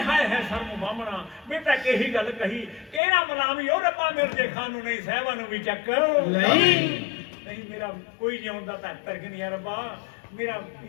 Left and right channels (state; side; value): drops out; right; at 3.0 s